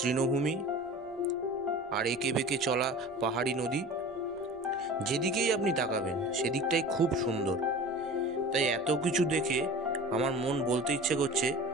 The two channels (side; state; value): left; noise; rumble, 28 dB below the sound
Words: আর এঁকে বেঁকে চলা পাহাড়ি নদী, যেদিকেই আপনি তাকাবেন সেদিকটাই খুব সুন্দর। তাই এত কিছু দেখে আমার মন বলতে ইচ্ছে করছে,